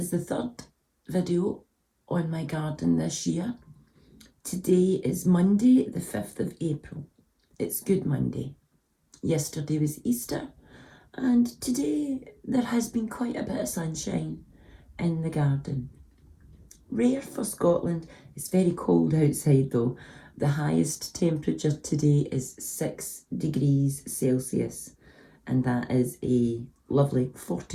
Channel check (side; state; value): both; identical; correlation 1.00